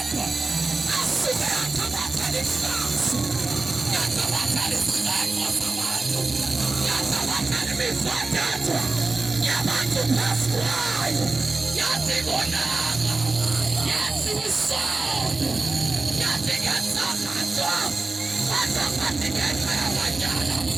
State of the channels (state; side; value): quieter; left; 3.6 dB